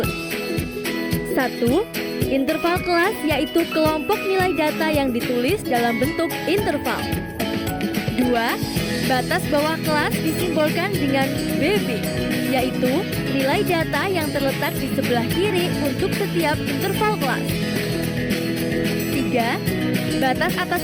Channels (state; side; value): identical; both; correlation 1.00